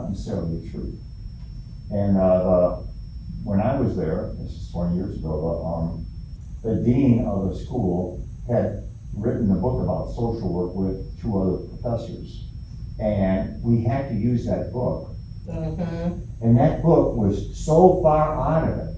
necessarily true. And, when I was there, this is 20 years ago, the dean of the school had written a book about social work with 2 other professors. And we had to use that book. Mm-hmm. And that book was so far out of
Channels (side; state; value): both; identical; correlation 1.00